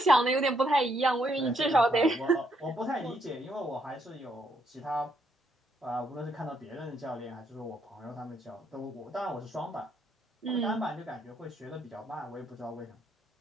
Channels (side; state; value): both; normal; correlation 0.74